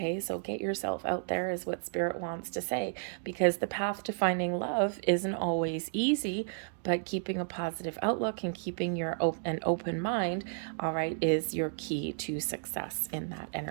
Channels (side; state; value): left; silent; digital silence